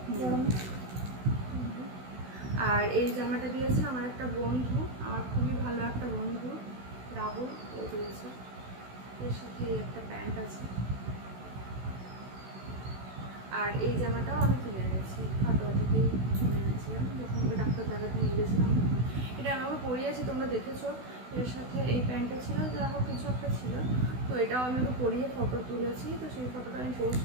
গরমে। আর এই জামাটা দিয়েছে আমার একটা বন্ধু, আমার খুবই ভালো একটা বন্ধু, রাহুল, ও দিয়েছে। এর সাথে একটা প্যান্ট আছে, আর এই জামাটাও আমি কিনে এনেছি, খাটোয়া থেকেই কিনে এনেছিলাম যখন ওকে ডাক্তার দেখাতে নিয়ে গেছিলাম তখন। এটা আমি ওকে পরিয়েছি, তোমরা দেখেছো। এর সাথে এই প্যান্টটা ছিল, যা হোক কিছু একটা ছিল, তো এটাও আমি ওকে পরিয়ে ফটো তুলেছি, তো সেই ফটোটা আমি পোস্ট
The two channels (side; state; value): left; late; 16 ms